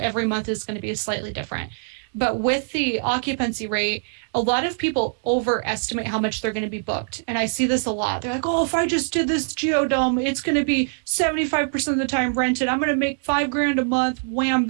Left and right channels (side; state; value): left; silent; digital silence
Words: month is going to be slightly different. But with the occupancy rate, a lot of people overestimate how much they're going to be booked. And I see this a lot. They're like, oh, if I just did this geodome, it's going to be 75% of the time rented. I'm going to make 5 grand a month. Wham,